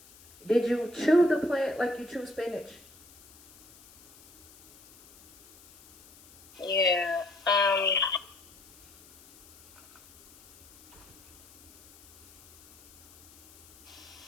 Did you chew the plant like you chew spinach? Yeah.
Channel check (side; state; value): left; noise; hiss, 24 dB below the sound